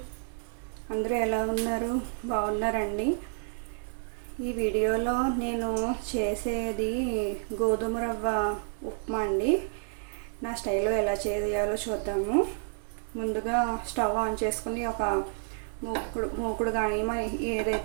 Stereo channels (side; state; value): left; silent; digital silence